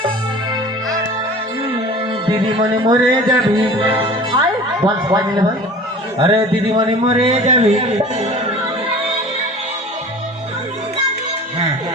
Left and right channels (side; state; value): both; normal; correlation 0.41